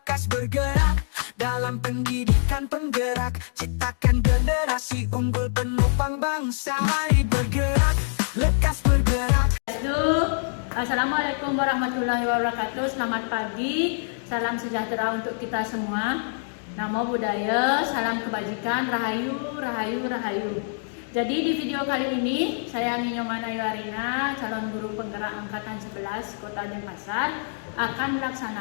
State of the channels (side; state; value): right; silent; digital silence